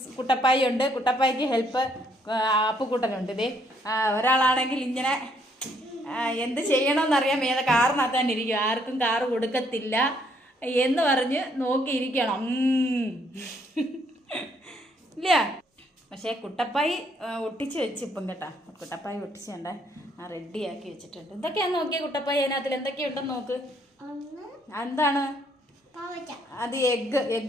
കുട്ടപ്പായി ഉണ്ട്, കുട്ടപ്പായിക്ക് ഹെൽപ്പ് അപ്പുക്കുട്ടനുണ്ട്. ഇതേ ഒരാളാണെങ്കിൽ ഇങ്ങനെ എന്ത് ചെയ്യണമെന്നറിയാൻ ഏത് കാറിനകത്ത് തന്നെ ഇരിക്കും. ആർക്കും കാറ് കൊടുക്കത്തില്ല എന്ന് പറഞ്ഞ് നോക്കിയിരിക്കണം. ഇല്ല, പക്ഷേ കുട്ടപ്പായി ഒട്ടിച്ച് വെച്ച് ഇപ്പം കേട്ടാ. കുട്ടപ്പായി ഒട്ടിച്ച് കണ്ടേ റെഡിയാക്കി വെച്ചിട്ടുണ്ട്. എന്തൊക്കെയാന്ന് നോക്കിയേ കുട്ടപ്പായി, അതിനകത്തിൽ എന്തൊക്കെയുണ്ടെന്ന് നോക്ക്. എന്താണ് അത്?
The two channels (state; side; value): normal; both; correlation 0.69